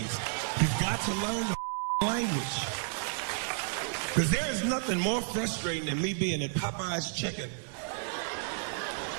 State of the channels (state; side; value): silent; left; digital silence